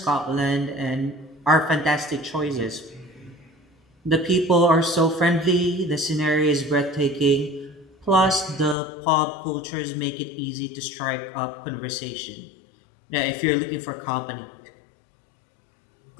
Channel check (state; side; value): drops out; right; at 8.8 s